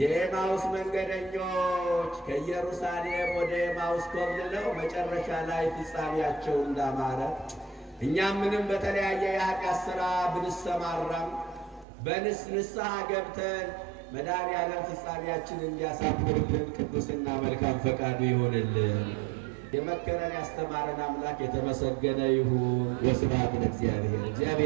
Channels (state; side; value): drops out; left; at 11.9 s